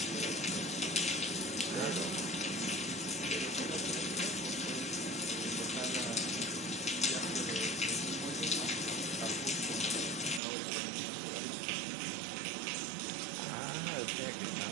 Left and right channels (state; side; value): drops out; left; at 10.4 s